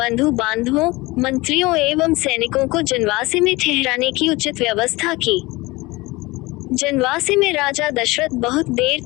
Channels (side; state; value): right; quieter; 21.9 dB